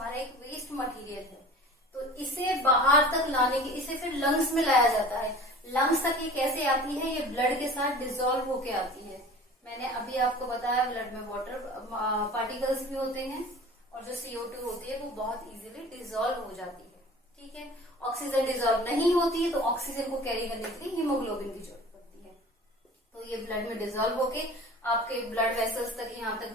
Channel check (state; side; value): normal; both; correlation 0.42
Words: एक वेस्ट मटेरियल है। तो इसे बाहर तक लाने की, इसे फिर लंग्स में लाया जाता है। लंग्स तक ये कैसे आती है, ये ब्लड के साथ डिसॉल्व होके आती है। मैंने अभी आपको बताया ब्लड में वाटर पार्टिकल्स भी होते हैं, और जो CO2 होती है वो बहुत इजीली डिसॉल्व हो जाती है, ठीक है। ऑक्सीजन डिसॉल्व नहीं होती है, तो ऑक्सीजन को कैरी करने के लिए हीमोग्लोबिन की जरूरत पड़ती है। तो ये ब्लड में डिसॉल्व होके आपके ब्लड वेसल्स तक, यहाँ तक